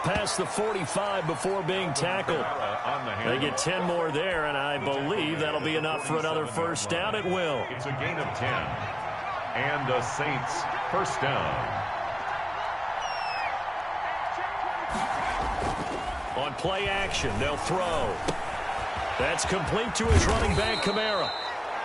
past the 45 before being tackled. They get 10 more there, and I believe that'll be enough for another first down. It will. It's a gain of 10. And the Saints first down. On play action, they'll throw. That's complete to his running back, Kamara.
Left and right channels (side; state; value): both; identical; correlation 1.00